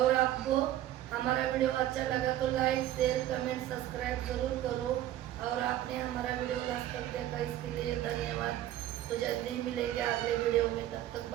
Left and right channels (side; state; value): left; quieter; 13.1 dB